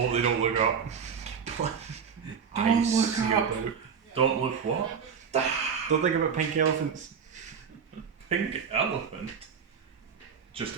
they don't look up. Don't Eyes look sealed up. out. don't look what? Don't think about pink elephants. Pink elephant just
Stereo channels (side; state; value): left; quieter; 6.7 dB